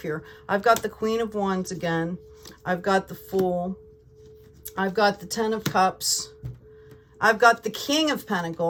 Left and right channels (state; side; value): identical; both; correlation 1.00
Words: here. I've got the Queen of Wands again. I've got the Fool. I've got the Ten of Cups. I've got the King of